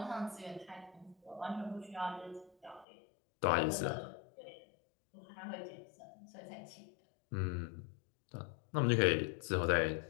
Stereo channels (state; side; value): drops out; right; at 2.9 s